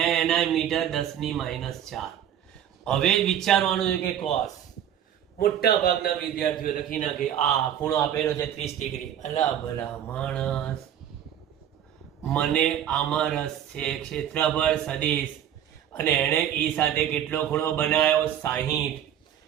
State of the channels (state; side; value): quieter; left; 10.2 dB